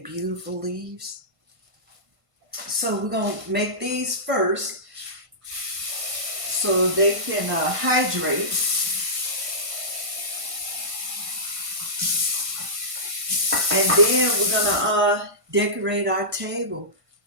beautiful leaves? So we're gonna make these first so they can hydrate. And then we're gonna decorate our table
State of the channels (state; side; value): late; left; 1.5 ms